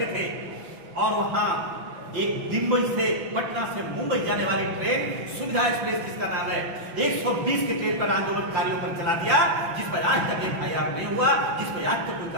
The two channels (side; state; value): left; late; 5.8 ms